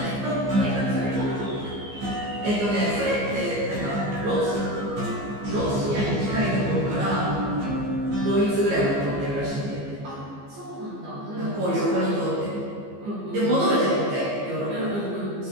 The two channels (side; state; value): left; late; 15 ms